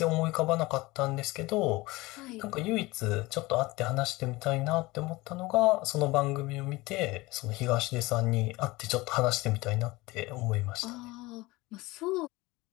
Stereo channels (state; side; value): quieter; right; 21.3 dB